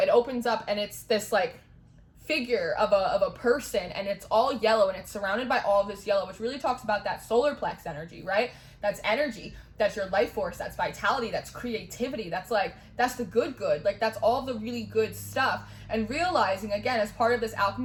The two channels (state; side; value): identical; both; correlation 1.00